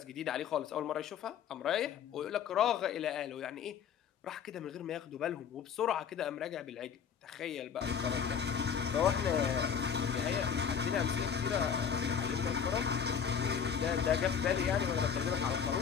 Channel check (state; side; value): quieter; right; 7.5 dB